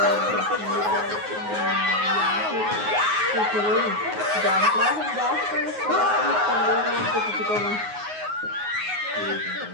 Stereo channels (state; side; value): late; left; 9.5 ms